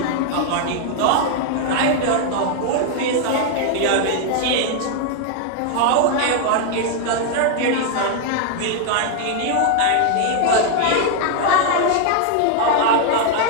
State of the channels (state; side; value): different; both; correlation 0.00